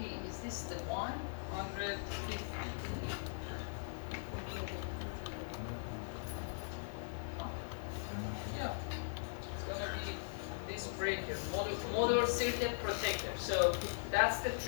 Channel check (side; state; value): right; silent; digital silence